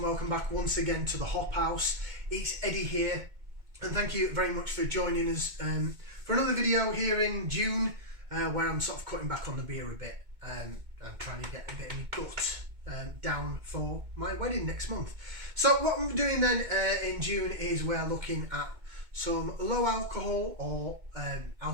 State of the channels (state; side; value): late; left; 2.2 ms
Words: welcome back once again to the Hop House. It's Eddie here, and thank you very much for joining us for another video here in June, where I'm sort of cutting back on the beer a bit and trying to get a bit of my gut down for my wedding next month. So what I'm doing then in June is we're looking at some low alcohol or